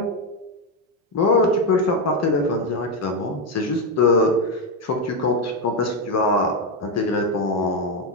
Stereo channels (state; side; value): normal; both; correlation 0.06